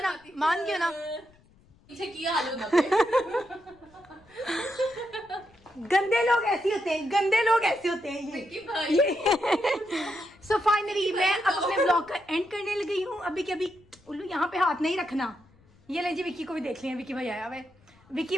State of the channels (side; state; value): left; noise; rumble, 30 dB below the sound